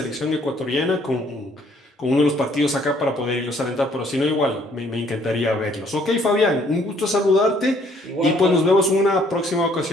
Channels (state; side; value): normal; both; correlation 0.63